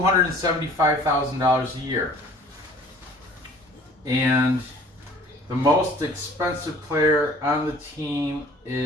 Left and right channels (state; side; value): normal; both; correlation 0.51